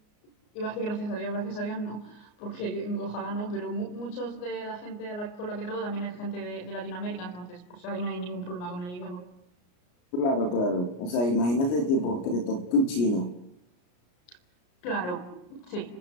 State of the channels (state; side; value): late; right; 33 ms